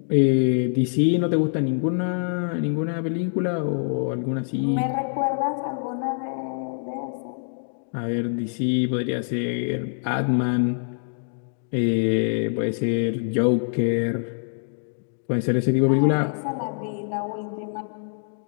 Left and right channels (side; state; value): right; silent; digital silence